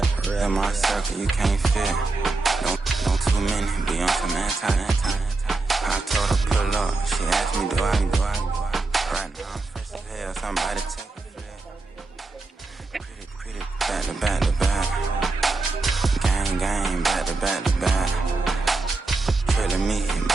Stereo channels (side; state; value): left; quieter; 3.5 dB